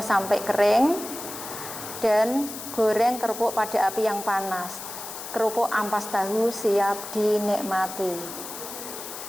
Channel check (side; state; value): left; noise; hiss, 10 dB below the sound